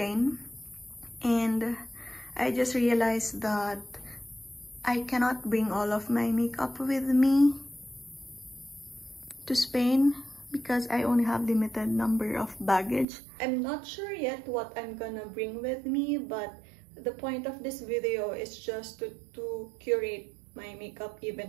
and I just realized that I cannot bring all of my makeup with me to Spain because I only have limited number of baggage. I'm not sure yet what I'm gonna bring with me, but the point of this video is just to curate my makeup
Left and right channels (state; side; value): drops out; left; at 13.1 s